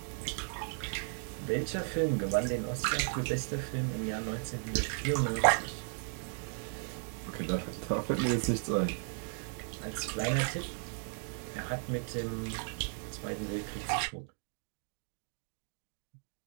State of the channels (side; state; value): left; silent; 54 dB below the other